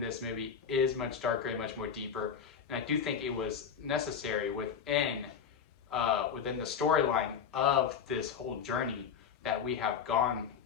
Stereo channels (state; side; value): quieter; right; 7.2 dB